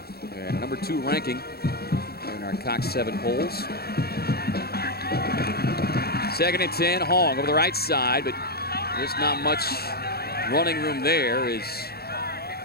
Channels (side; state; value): right; late; 0.46 ms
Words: and number 2 ranking in our Cox 7 polls. 2nd and 10, Hong over the right side, but just not much running room there as